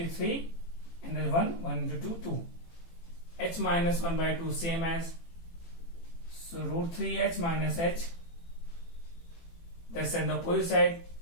3, and then 1 into 2 2. H minus 1/2 same as, so root 3H minus H, that's on the opposite side,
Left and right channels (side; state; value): right; late; 18 ms